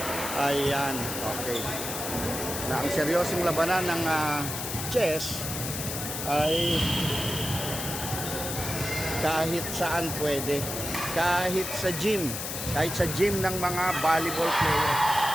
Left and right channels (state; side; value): noise; left; hiss, 5 dB below the sound